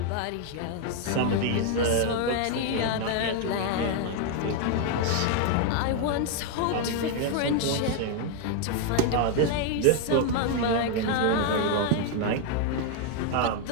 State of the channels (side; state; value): both; different; correlation 0.00